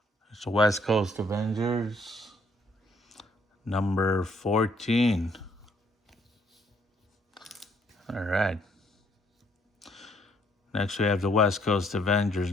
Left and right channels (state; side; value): normal; both; correlation 0.68